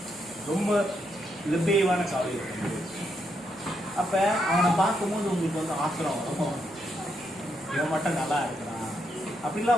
ரொம்ப லிபேவான கவலைகள். அப்ப அவனை பார்க்கும்போது உங்களுக்கு வந்து ஆத்திரம் வரும், இவன் மட்டும் நல்லா இருக்கிறான்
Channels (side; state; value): left; noise; rumble, 29 dB below the sound